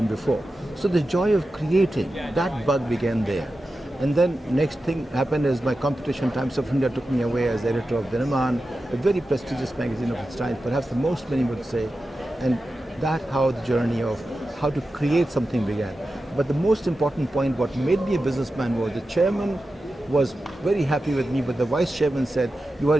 before. So the joy of creating, that bug began there. And then next thing happened is my competition, Times of India, took me away as editor of Dinaman, a very prestigious magazine of its time, perhaps the most many would say. And that's how the journey of how to create something began. But the most important point, what made me a businessman, was the chairman was very happy with me, but the vice chairman said, "You are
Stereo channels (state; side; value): normal; both; correlation 0.92